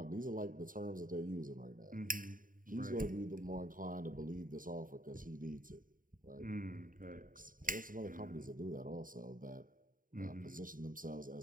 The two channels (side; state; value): left; late; 0.40 ms